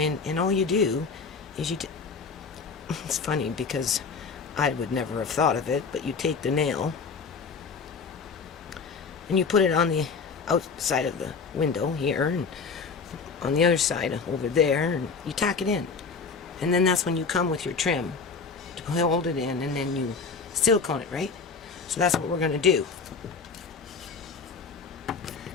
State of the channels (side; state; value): right; quieter; 5.0 dB